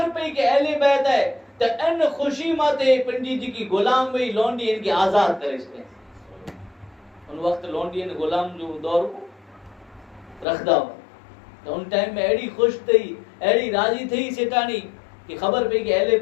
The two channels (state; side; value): drops out; right; at 10.5 s